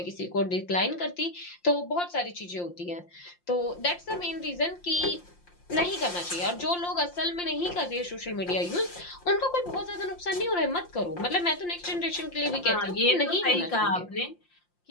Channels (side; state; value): right; late; 5.7 ms